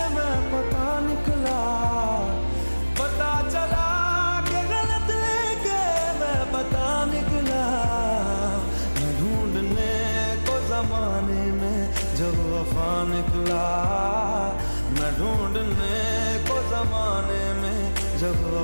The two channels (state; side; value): inverted; both; correlation -1.00